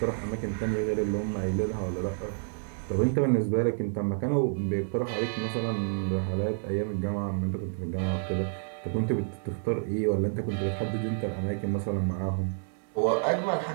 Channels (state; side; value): silent; left; digital silence